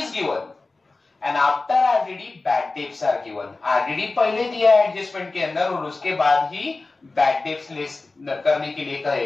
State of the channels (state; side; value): quieter; right; 3.5 dB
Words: given and after RDD bad debts are given. RDD पहले दिया है एडजस्टमेंट के अंदर और उसके बाद ही बैड डेब्ट्स लेस करने के लिए कहे